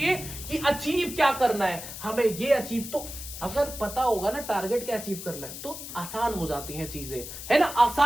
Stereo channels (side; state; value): left; noise; hiss, 10 dB below the sound